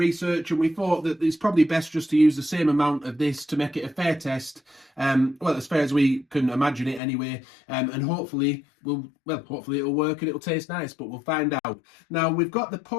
and we thought that it's probably best just to use the same amount of this to make it a fair test. Well, as fair as we can imagine it anyway. And hopefully hopefully it'll work and it'll taste nice, but we'll find out. Now we've got the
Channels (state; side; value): drops out; right; at 7.0 s